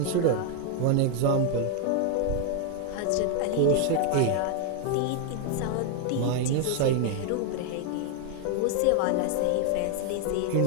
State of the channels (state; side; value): different; both; correlation 0.00